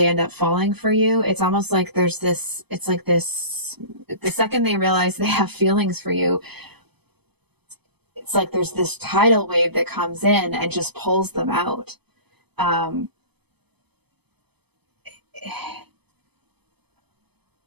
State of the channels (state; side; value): late; left; 0.98 ms